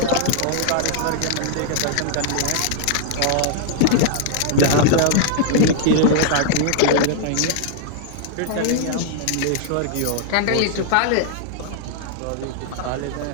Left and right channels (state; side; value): different; both; correlation -0.01